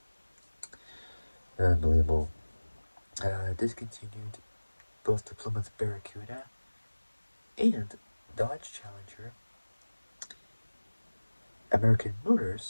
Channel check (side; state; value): both; inverted; correlation -1.00